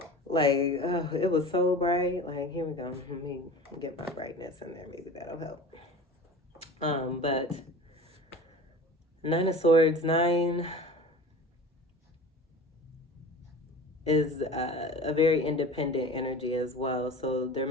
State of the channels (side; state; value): both; normal; correlation 0.36